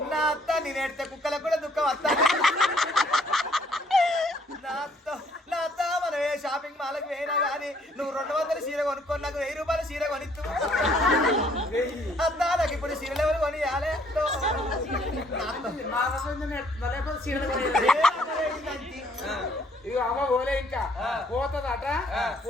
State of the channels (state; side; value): normal; both; correlation 0.64